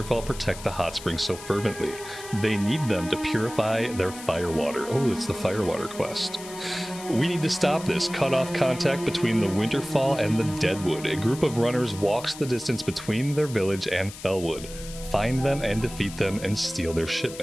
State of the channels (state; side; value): noise; left; hiss, 14 dB below the sound